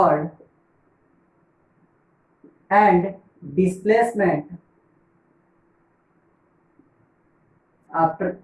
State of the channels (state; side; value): identical; both; correlation 1.00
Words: and displacement after